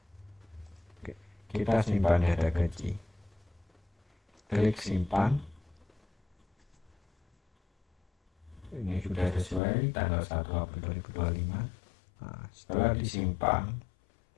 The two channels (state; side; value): drops out; right; at 9.6 s